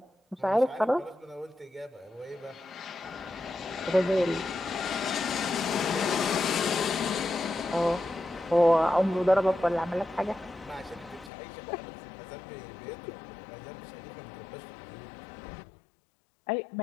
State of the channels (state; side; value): drops out; right; at 11.3 s